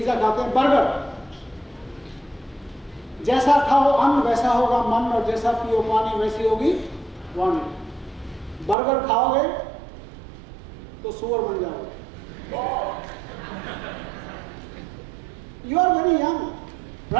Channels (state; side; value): drops out; left; at 8.8 s